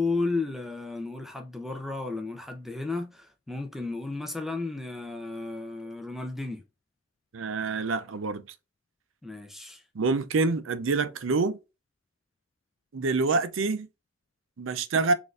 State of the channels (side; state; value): both; normal; correlation 0.21